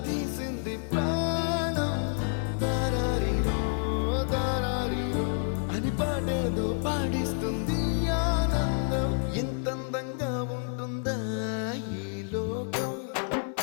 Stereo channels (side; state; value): right; silent; 57 dB below the other